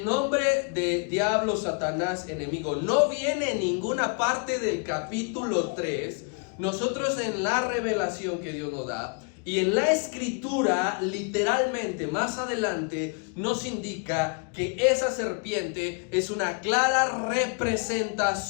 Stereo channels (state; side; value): quieter; right; 36.5 dB